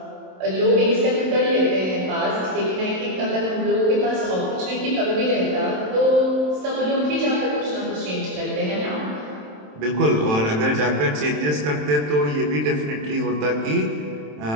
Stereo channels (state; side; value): late; left; 27 ms